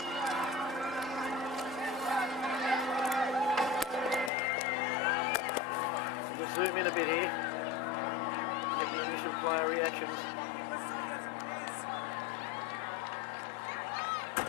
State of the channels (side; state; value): right; drops out; at 4.3 s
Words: We'll zoom in a bit here. Get the initial player reactions.